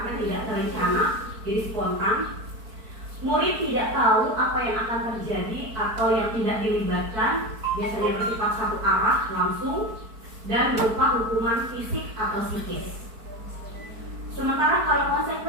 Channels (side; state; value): left; late; 4.5 ms